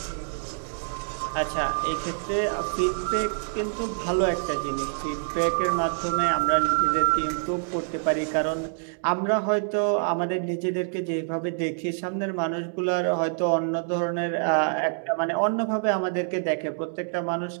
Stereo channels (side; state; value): left; silent; digital silence